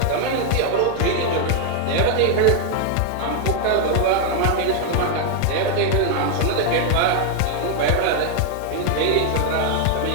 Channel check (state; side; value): different; both; correlation 0.00